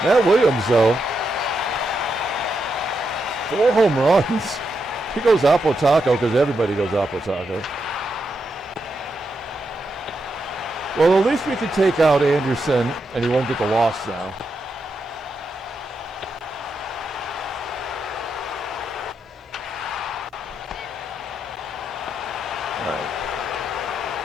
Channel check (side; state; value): both; normal; correlation 0.83